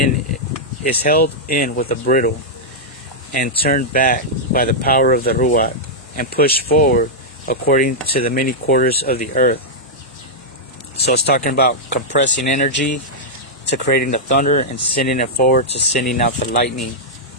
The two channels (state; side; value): normal; both; correlation -0.07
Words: with a bridle, and turned back by the power of the Ruach, and pushed forward according to the many quarters of the earth. So it's talking about compressing energy to creating the thunder, and sending it forward to sending out the lightning.